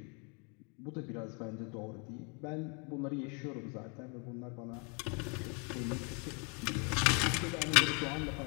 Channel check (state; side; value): quieter; right; 35.1 dB